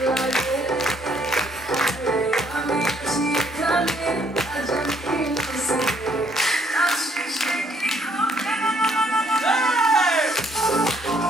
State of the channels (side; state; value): both; normal; correlation 0.67